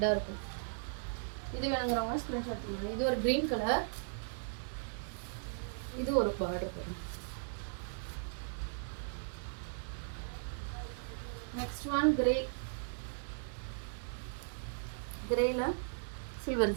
இருக்கும். இது வேணுங்கிறவங்க ஸ்க்ரீன்ஷாட் பண்ணுங்க. இது ஒரு க்ரீன் கலர், இது ஒரு பார்டர் பாருங்க. நெக்ஸ்ட் ஒன் கிரேல silver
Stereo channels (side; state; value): left; silent; digital silence